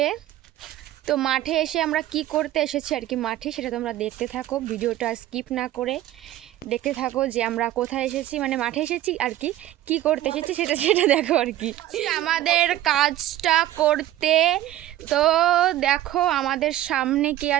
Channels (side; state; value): left; quieter; 13.9 dB